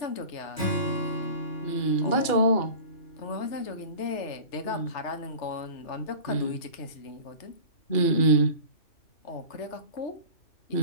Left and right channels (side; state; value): right; late; 2.4 ms